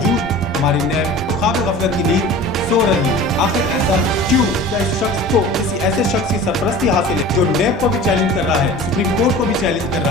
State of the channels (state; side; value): normal; both; correlation 0.39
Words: हमारी नैब ख्वाब गफलत की नींद سو رہی ہے. آخر ایسا کیوں؟ کیا اس شخص کو کسی ایسے شخص کی سرپرستی حاصل ہے جو نیب کو بھی چیلنج کر رہا ہے, سپریم کورٹ کو بھی چیلنج کر